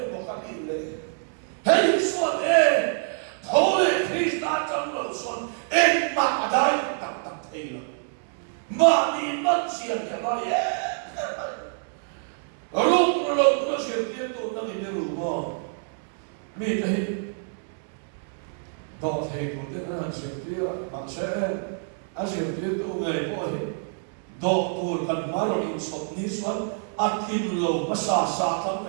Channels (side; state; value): left; silent; digital silence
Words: bukan ini. Hei suat thole Krista janglo suat mak adai tak thela. Mani manusia dia bari. Rum sir dia tu nanti dia rumah. Mi tahi. Dot hei tu dia nak sir dia maksud asir dia tu ngai boleh. Dot tu kan maru insot ni suat akin lo masa tam